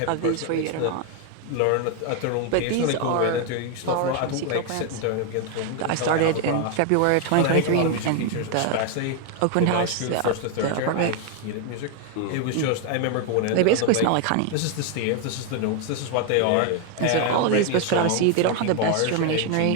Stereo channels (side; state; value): both; different; correlation 0.01